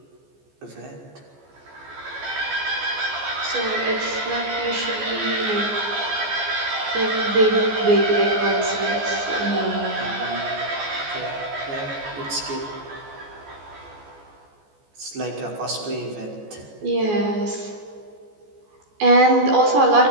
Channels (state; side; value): late; left; 14 ms